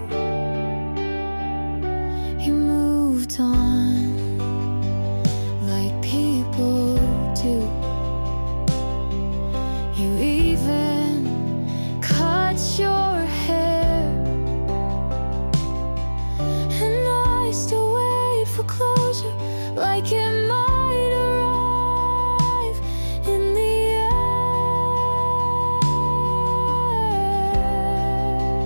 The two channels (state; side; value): inverted; both; correlation -1.00